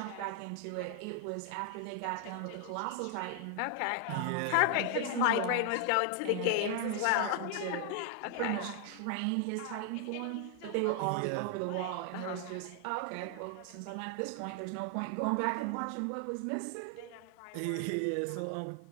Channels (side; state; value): both; different; correlation 0.00